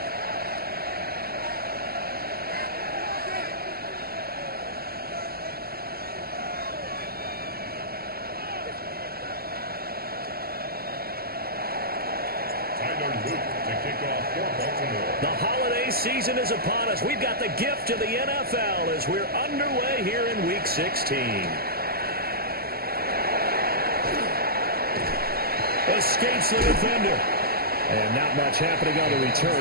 The holiday season is upon us. We've got the gift of the NFL as we're underway here in Week 16. Escapes the defender. And not much happening on the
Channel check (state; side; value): late; left; 0.45 ms